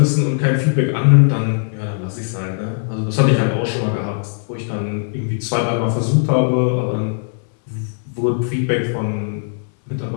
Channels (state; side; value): silent; right; digital silence